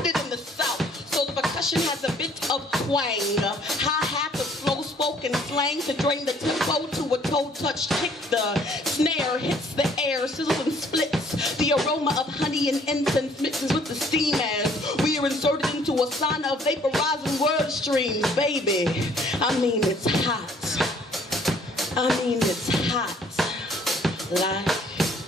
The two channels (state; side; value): normal; both; correlation 0.60